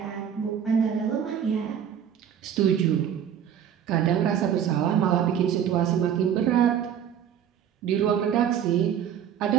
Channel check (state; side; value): quieter; left; 8.9 dB